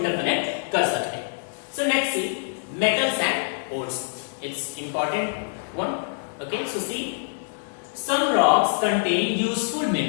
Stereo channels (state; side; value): silent; right; digital silence